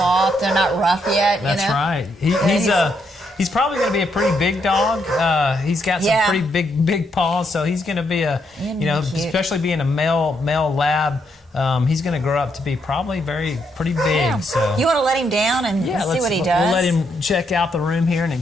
They're not rough yet. That's right. He's probably going to be a pretty big dog. He's got some pretty big paws, so he's going to be especially being a male lab. He's going to grow up to be probably pretty big. Yeah. So you want to let him down and see what he does? We'll let him check out the room here and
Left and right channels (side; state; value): both; normal; correlation 0.77